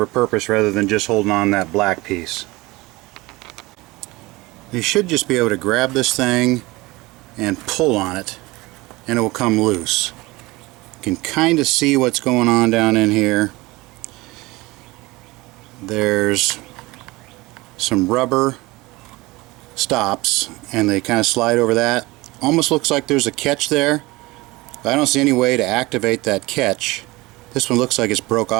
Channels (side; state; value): left; quieter; 21.7 dB